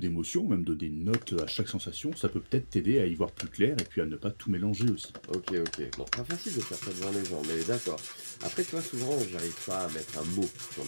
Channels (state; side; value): inverted; both; correlation -1.00